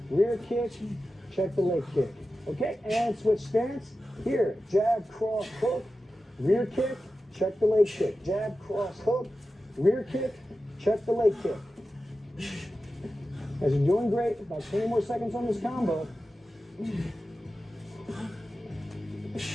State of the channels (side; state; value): both; normal; correlation 0.93